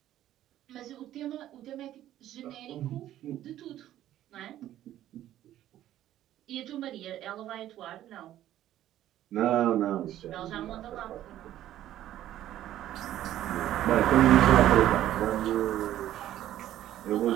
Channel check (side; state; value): left; quieter; 12.8 dB